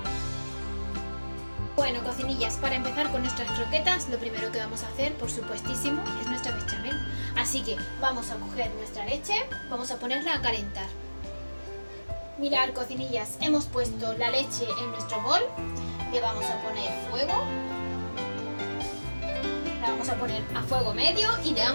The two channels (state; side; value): inverted; both; correlation -1.00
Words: Bueno, cocinillas, para empezar con nuestras croquetas, lo primero que vamos a hacer, por supuestísimo, es nuestra bechamel. Así que vamos a coger nuestra leche, vamos a ponerla a calentar. Mirad, cocinillas, hemos puesto la leche en nuestro bol, le vamos a poner fuego, la vamos a poner a fuego medio y le